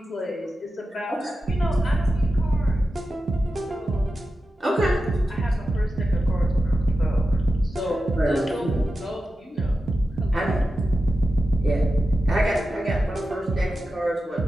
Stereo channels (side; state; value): both; normal; correlation 0.92